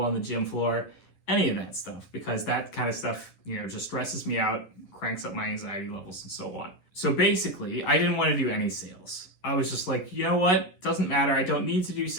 on the gym floor, any of that stuff, because that kind of stuff, just stresses me out, cranks up my anxiety levels and so on. So basically, I didn't want to do any sales. I was just like, you know what? Doesn't matter. I don't need to do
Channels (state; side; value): late; right; 11 ms